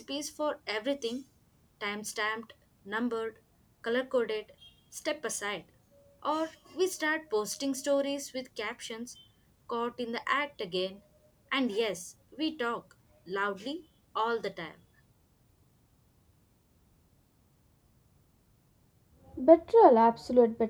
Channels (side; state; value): both; identical; correlation 1.00